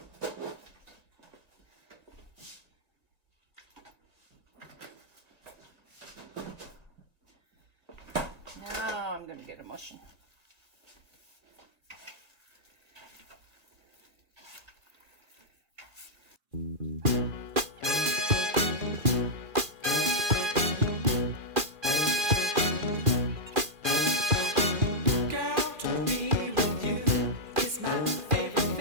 Now I'm going to get a mushing.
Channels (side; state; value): left; late; 2.4 ms